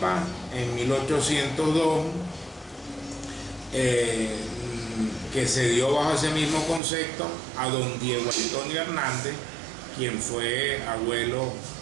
en 1802, que se dio bajo ese mismo concepto a don Diego Antonio Hernández, quien fue abuelo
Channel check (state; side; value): drops out; left; at 6.8 s